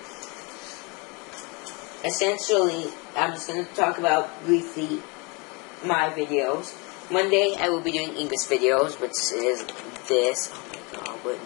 Essentially, I'm just going to talk about briefly my videos. Monday, I will be doing English videos, which is this. Oh my god, what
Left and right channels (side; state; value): right; quieter; 29.5 dB